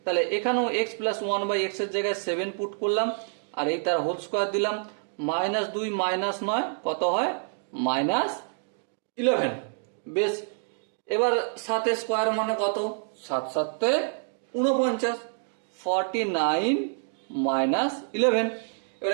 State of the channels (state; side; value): silent; left; digital silence